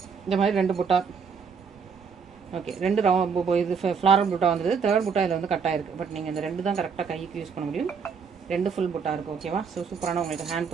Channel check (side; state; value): left; quieter; 6.0 dB